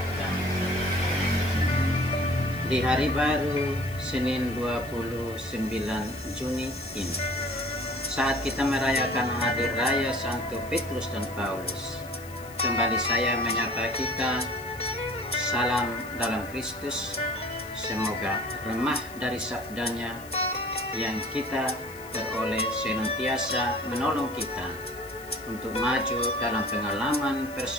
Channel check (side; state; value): left; noise; hiss, 19 dB below the sound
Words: di hari baru Senin 29 Juni ini, saat kita merayakan hari raya Santo Petrus dan Paulus, kembali saya menyapa kita, salam dalam Kristus. Semoga remah dari sabdanya yang kita peroleh senantiasa menolong kita untuk maju dalam pengalaman